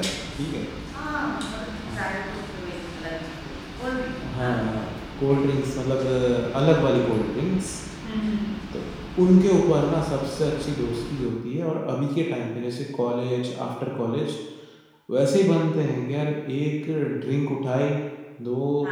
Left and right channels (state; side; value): identical; both; correlation 1.00